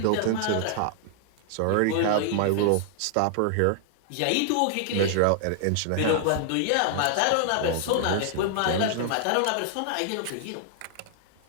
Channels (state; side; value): different; both; correlation -0.01